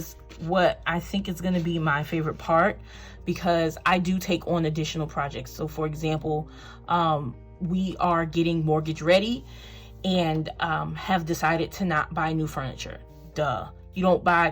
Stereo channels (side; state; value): both; identical; correlation 1.00